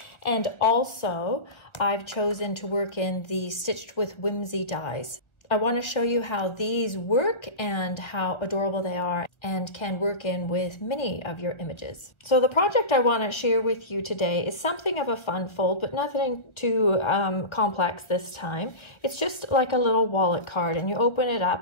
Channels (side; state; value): right; late; 1.4 ms